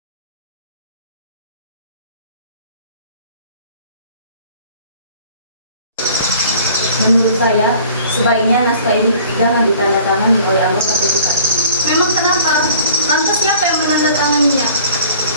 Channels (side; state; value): both; inverted; correlation -0.50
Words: Menurut saya, sebaiknya naskah ini jangan ditandatangani oleh anggota PPKI. Memang kenapa? Lantas siapa yang menandatanganinya?